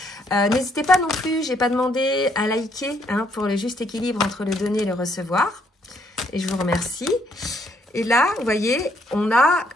N'hésitez pas non plus, j'ai pas demandé à liker hein, pour le juste équilibre entre le donner et le recevoir. Et je vous remercie. Et là, vous voyez, on a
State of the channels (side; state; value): both; normal; correlation 0.70